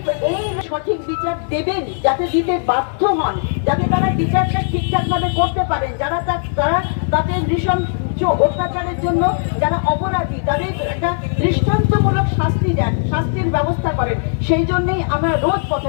সঠিক বিচার দেবেন, যাতে দিতে বাধ্য হন, যাতে তারা বিচারটা ঠিকঠাকভাবে করতে পারেন, যারা তাদের নৃশংস অত্যাচারের জন্য যারা অপরাধী তাদের একটা দৃষ্টান্তমূলক শাস্তি দেন, শাস্তির ব্যবস্থা করেন। সেই জন্যই আমরা রোজ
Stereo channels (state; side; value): silent; right; 60 dB below the other